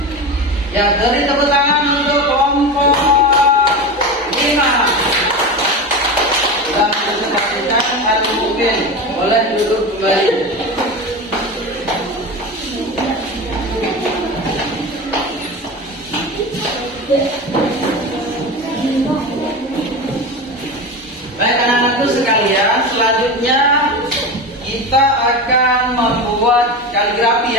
Ya, beri tepuk tangan untuk kelompok 5. Sudah presentasikan Al-Mu'min. Boleh duduk kembali. Baik anak-anakku sekalian, selanjutnya kita akan membuat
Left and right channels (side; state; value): both; normal; correlation 0.24